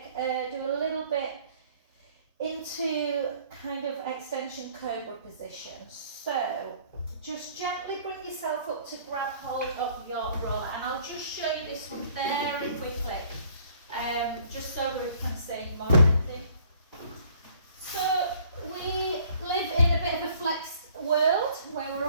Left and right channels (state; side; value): inverted; both; correlation -0.57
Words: do a little bit into kind of extension cobra position. So just gently bring yourself up to grab hold of your roller. And I'll just show you this one very quickly. just so Ruth can see more of it. So we live in a bit of a flexed world where we're